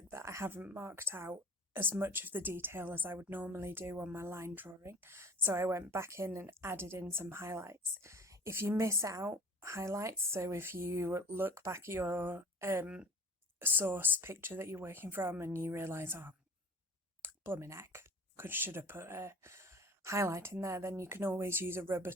that I haven't marked out as much of the detail as I would normally do on my line drawing. So I went back in and added in some highlights. If you miss out highlights, so if you look back at your source picture that you're working from and you realise, oh, blooming heck, should have put a highlight in there, then you can always use a rubber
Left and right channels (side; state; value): both; normal; correlation 0.42